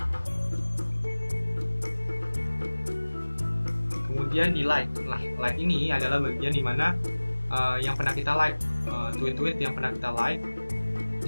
kemudian di like. Nah, like ini adalah bagian dimana yang pernah kita like, tweet-tweet yang pernah kita like.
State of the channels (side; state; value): both; inverted; correlation -1.00